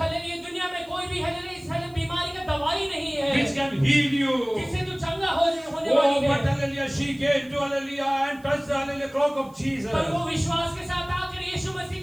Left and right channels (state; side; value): noise; right; hiss, 28 dB below the sound